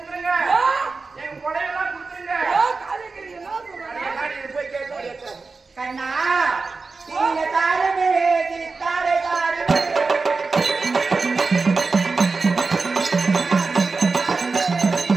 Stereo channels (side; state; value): left; quieter; 4.2 dB